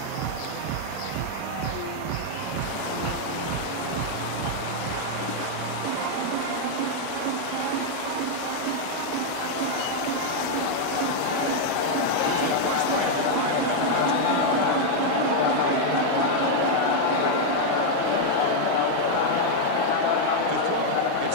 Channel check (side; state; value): both; different; correlation 0.00